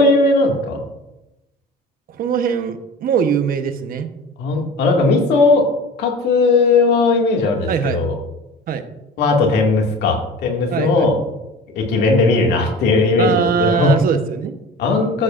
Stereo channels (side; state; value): both; normal; correlation 0.38